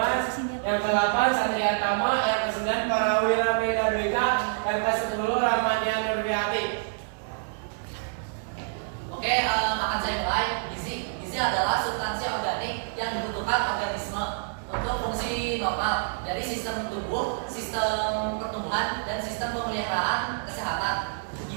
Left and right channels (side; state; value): left; silent; digital silence